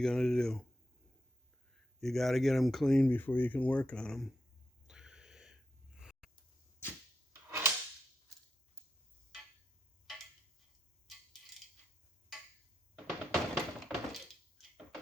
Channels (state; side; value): normal; both; correlation 0.85